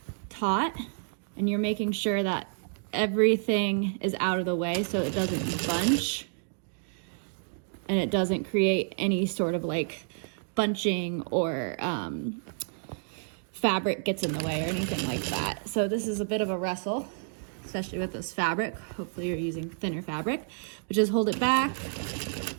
taut, and you're making sure that everything is out of the way so it doesn't bunch and it doesn't create any sort of like bunching or fabric gets in the way or anything like that. So this is a bit of a wrestle, especially with this fabric. Hopefully you're using thinner fabric, but just hold it back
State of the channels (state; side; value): silent; left; digital silence